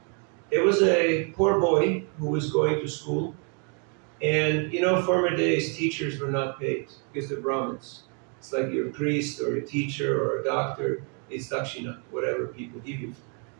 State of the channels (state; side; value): quieter; left; 39.0 dB